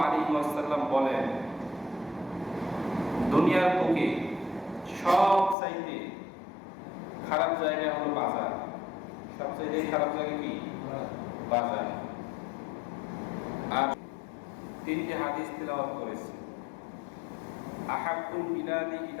আলাইহি ওয়াসাল্লাম বলেন, দুনিয়ার বুকে সবচাইতে খারাপ জায়গা হলো বাজার। সবচাইতে খারাপ জায়গা কি? বাজার। আর তিনটি হাদিস তেলাওয়াত করেছি। আহাব্বুল বিলাদি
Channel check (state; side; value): drops out; right; at 5.6 s